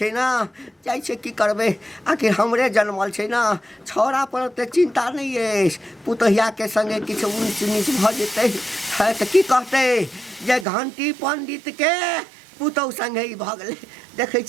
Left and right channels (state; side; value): drops out; left; at 10.7 s